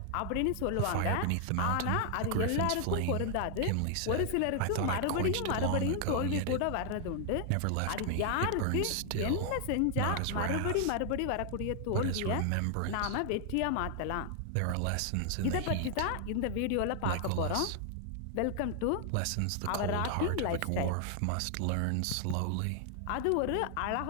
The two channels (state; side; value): different; both; correlation 0.00